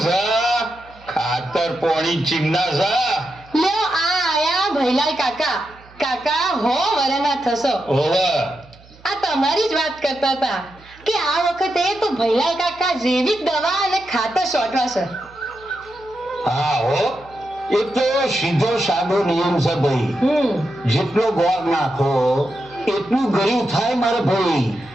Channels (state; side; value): noise; right; hum, 25 dB below the sound